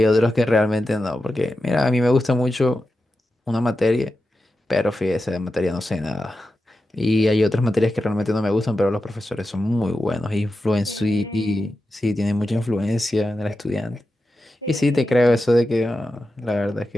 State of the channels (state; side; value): normal; both; correlation 0.91